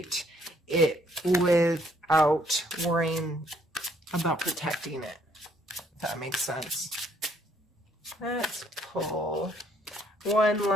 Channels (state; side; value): normal; both; correlation 0.66